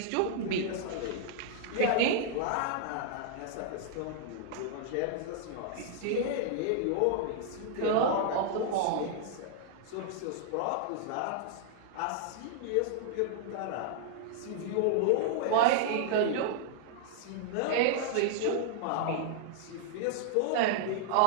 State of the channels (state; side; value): different; both; correlation -0.01